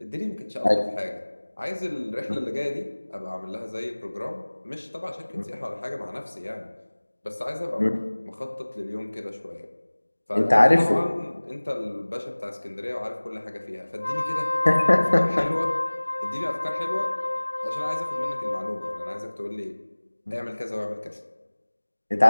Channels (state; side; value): inverted; both; correlation -1.00